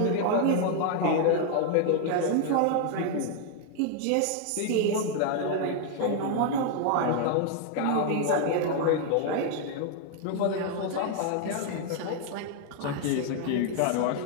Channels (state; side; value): different; both; correlation 0.00